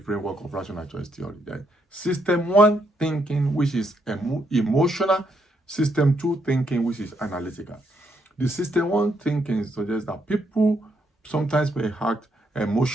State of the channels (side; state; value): both; normal; correlation 0.76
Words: of rational choice theory. There's system one thinking, which is emotional. System two thinking, which is analytical. The system one thinking suggests that people sometimes may act